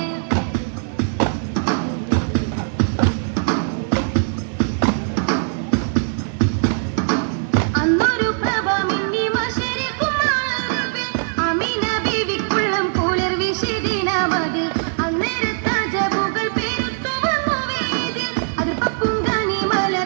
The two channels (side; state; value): left; silent; digital silence